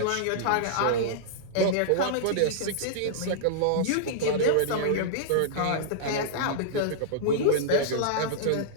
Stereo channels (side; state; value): both; different; correlation -0.01